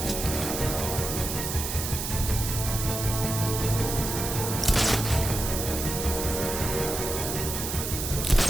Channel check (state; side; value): noise; right; hiss, 4 dB below the sound